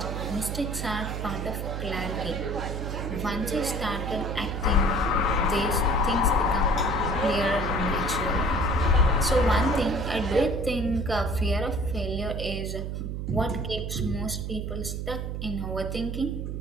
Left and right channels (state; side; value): noise; right; hum, 4 dB below the sound